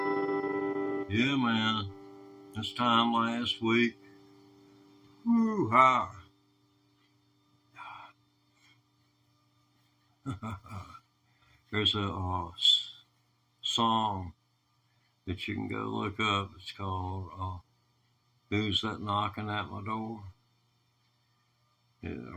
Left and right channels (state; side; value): identical; both; correlation 1.00